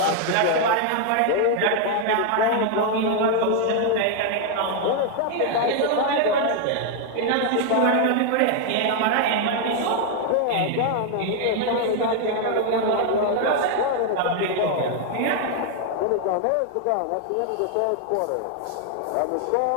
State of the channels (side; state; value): both; different; correlation 0.00